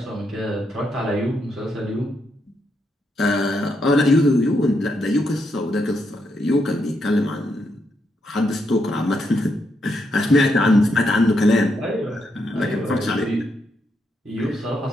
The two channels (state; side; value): normal; both; correlation 0.80